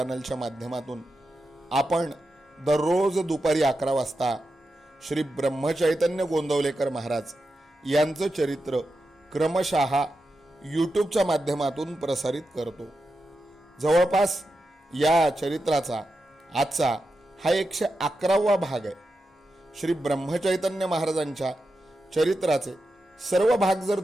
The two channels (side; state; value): both; normal; correlation 0.89